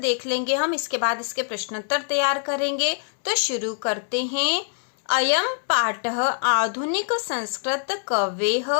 लेंगे हम, इसके बाद इसके प्रश्नोत्तर तैयार करेंगे। तो शुरू करते हैं। अयम पाठः आधुनिक संस्कृत कवेः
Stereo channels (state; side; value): silent; right; 63 dB below the other